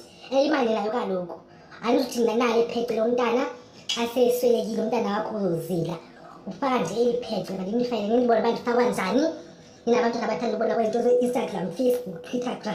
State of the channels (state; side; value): identical; both; correlation 1.00